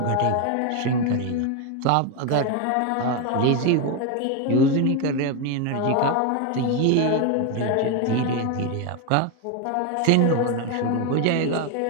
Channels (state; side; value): different; both; correlation 0.02